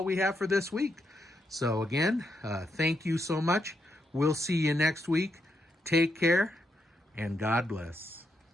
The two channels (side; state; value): both; normal; correlation 0.80